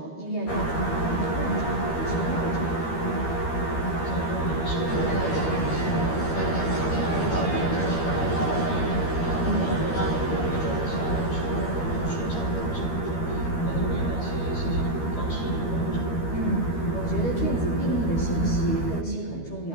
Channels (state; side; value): late; right; 13 ms